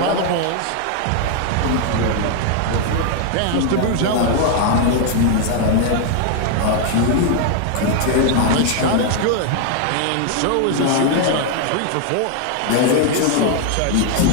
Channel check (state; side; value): different; both; correlation 0.00